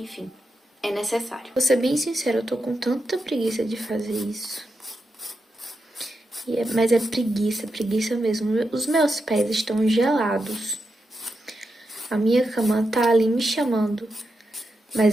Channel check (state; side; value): normal; both; correlation 0.87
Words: é necessário. Vou ser bem sincera, eu tô com tanta preguiça de fazer isso. Mas é preguiça mesmo. Os meus pés estão gelados. A minha cama tá ali me chamando.